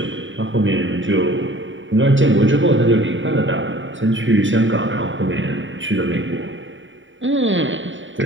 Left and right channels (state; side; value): late; left; 0.56 ms